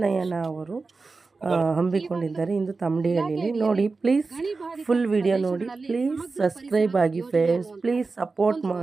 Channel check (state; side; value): quieter; left; 4.0 dB